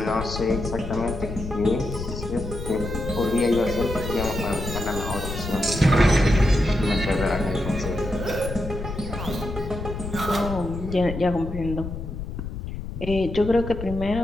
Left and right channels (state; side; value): noise; left; rumble, 7 dB below the sound